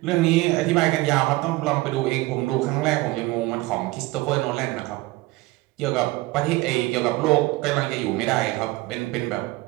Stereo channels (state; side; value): quieter; left; 20.5 dB